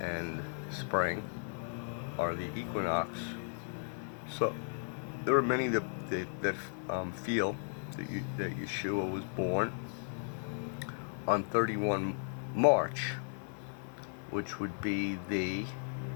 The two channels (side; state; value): right; silent; 54 dB below the other